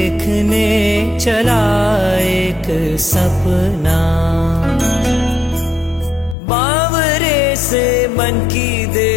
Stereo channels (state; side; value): drops out; right; at 6.4 s